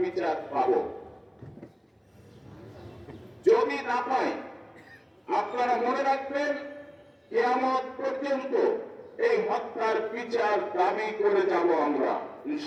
বিচার পাব। যদি না পাই আপনারা মনে রাখবেন কিয়ামত পর্যন্ত এই হত্যার বিচার দাবি করে যাব আমরা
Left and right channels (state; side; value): identical; both; correlation 1.00